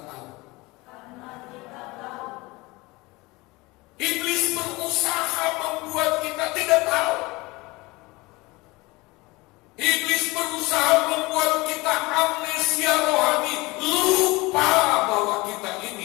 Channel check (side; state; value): right; quieter; 22.8 dB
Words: tahu. Iblis berusaha membuat kita tidak tahu. Iblis berusaha membuat kita amnesia rohani, lupa bahwa kita